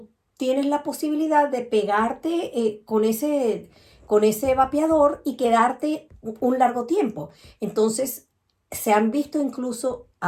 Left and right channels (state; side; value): identical; both; correlation 1.00